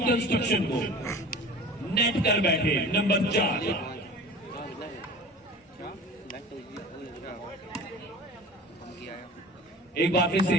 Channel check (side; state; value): both; normal; correlation 0.39